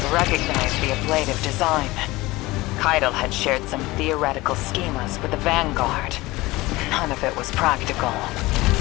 Recognize the ablative design. Keitel had shared some theoretical schemas with the Vanguard. None of it was practical.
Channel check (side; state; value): right; quieter; 20.2 dB